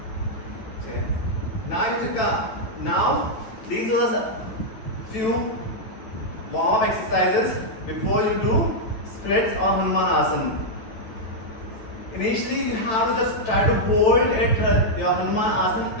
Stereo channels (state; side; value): late; right; 9.1 ms